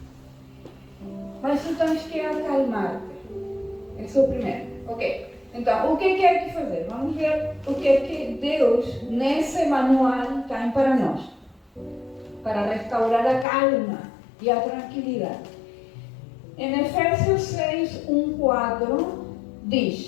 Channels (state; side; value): drops out; right; at 13.5 s